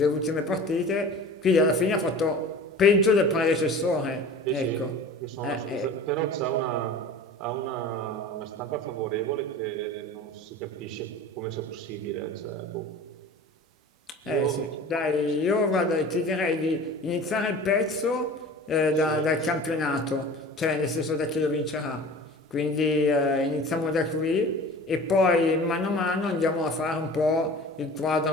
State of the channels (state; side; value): normal; both; correlation 0.39